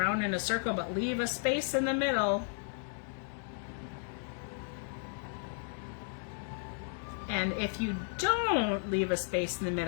in a circle, but leave a space in the middle. And if you don't leave a space in the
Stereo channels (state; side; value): silent; right; 55 dB below the other